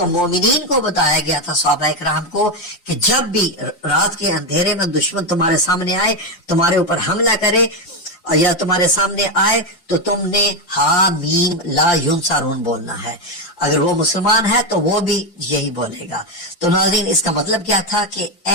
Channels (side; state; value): right; late; 5.7 ms